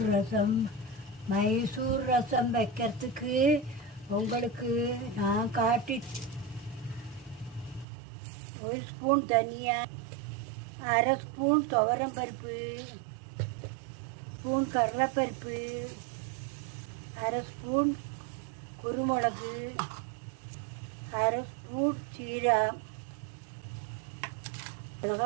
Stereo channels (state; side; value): drops out; left; at 7.9 s